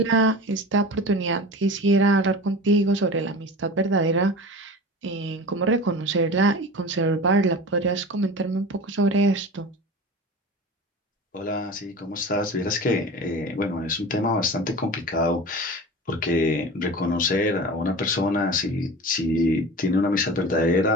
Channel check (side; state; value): both; normal; correlation 0.34